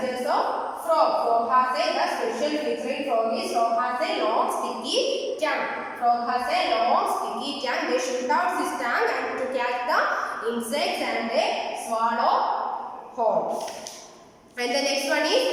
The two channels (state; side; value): identical; both; correlation 1.00